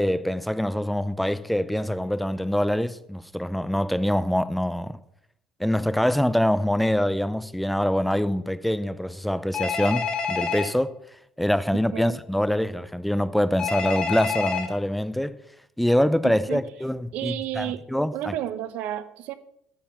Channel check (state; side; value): normal; both; correlation 0.94